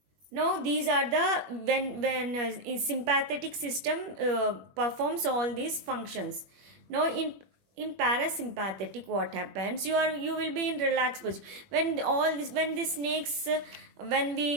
Now these are the when sympathetic system performs all these functions. Now in parasympathetic, what happens, you will be in relaxed position. When all this, when the snakes when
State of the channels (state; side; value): late; left; 21 ms